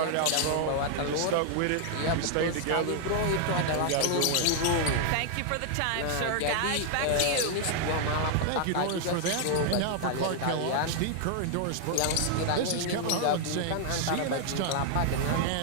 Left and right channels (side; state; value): both; different; correlation 0.00